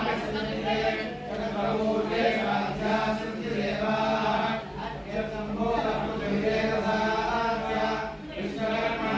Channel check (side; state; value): both; identical; correlation 1.00